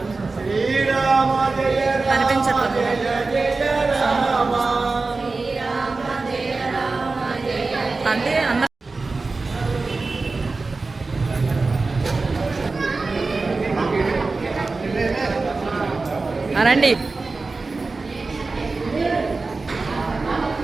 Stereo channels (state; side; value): quieter; left; 3.8 dB